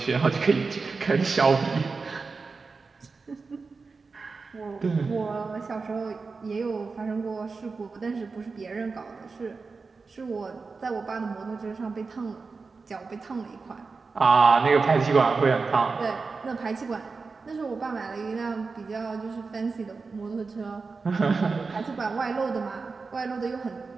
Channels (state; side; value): quieter; left; 4.4 dB